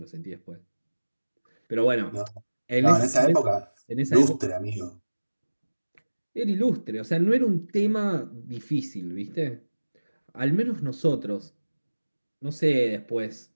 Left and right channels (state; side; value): inverted; both; correlation -1.00